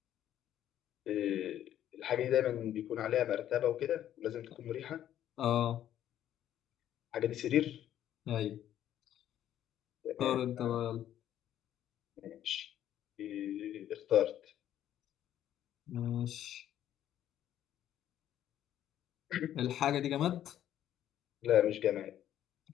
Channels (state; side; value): quieter; right; 11.4 dB